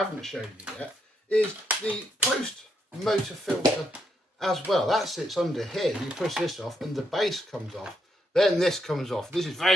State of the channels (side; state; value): both; normal; correlation 0.78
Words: shown you yet is the post motor filter as well. That sits under here. You push this off and the base comes off. Then this comes off. This is